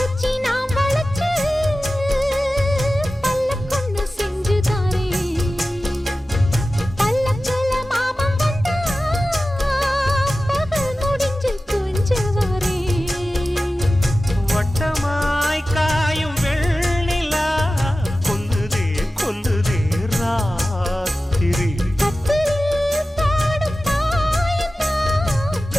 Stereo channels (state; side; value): normal; both; correlation 0.95